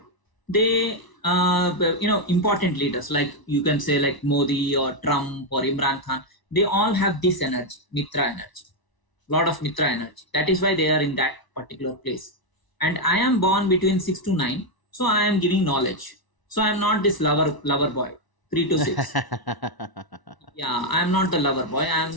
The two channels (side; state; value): right; late; 1.0 ms